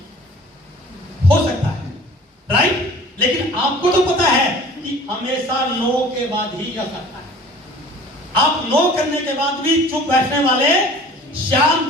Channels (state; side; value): normal; both; correlation 0.47